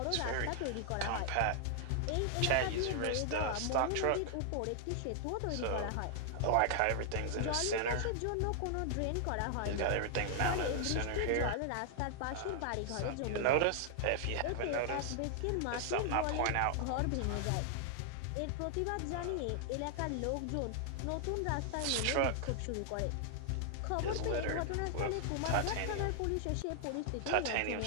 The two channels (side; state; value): both; different; correlation 0.00